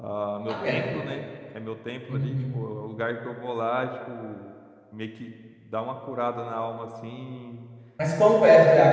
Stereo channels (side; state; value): both; identical; correlation 1.00